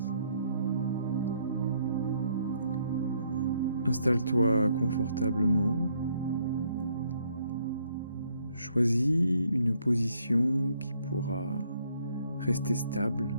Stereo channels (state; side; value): inverted; both; correlation -0.69